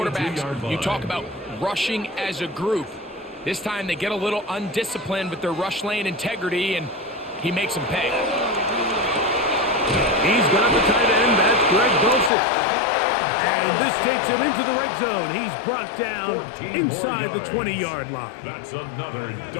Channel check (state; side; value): drops out; right; at 12.3 s